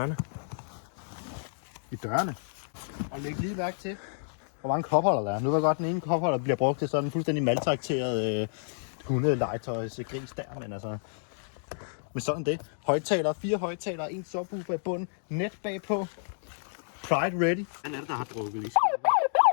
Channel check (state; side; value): silent; right; digital silence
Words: I dørene. Og læg lige mærke til, hvor mange kopholder der er. Nu ved jeg godt, den ene kopholder bliver brugt til sådan en fuldstændig maltrakteret hundelegetøjs gris der, men altså... Men sådan det. Højtalere, 4 højtalere, 1 subwoofer i bunden, net bagpå. Pride ready. Hvad er det, der har drukket lige?